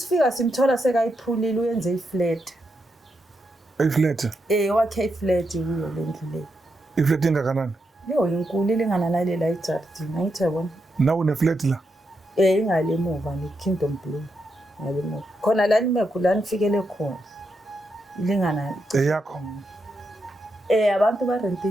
simthola sekayiphulile uyenze iflat Iflat wakhe iflat kuyo lendlu leyo iflat engakanani yo inkulu ilingana nalela iJardini angithi yabona nawe une-flat la ingale emuva neKingdom Blue ngale emuva khona la nimekho la nifikele khona ilingana eyakho abantu barente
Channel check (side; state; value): both; normal; correlation 0.83